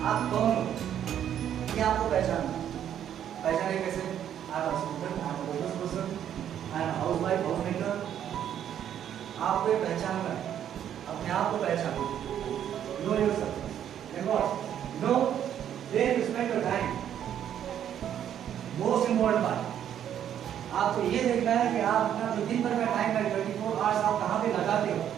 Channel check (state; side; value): quieter; left; 10.0 dB